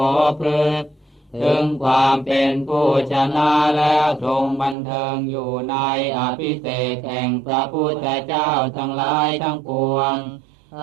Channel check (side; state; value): left; drops out; at 4.8 s